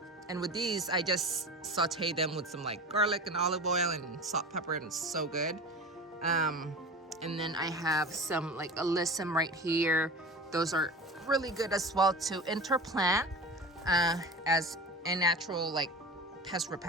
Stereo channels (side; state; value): both; normal; correlation 0.33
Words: with these, I just saute them with some like garlic and olive oil and salt, pepper, and it's so good. And then I have some like alyssum right here. Those are really good as well to interplant as a natural like pest